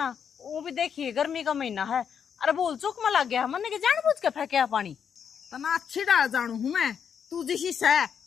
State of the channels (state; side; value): quieter; right; 7.5 dB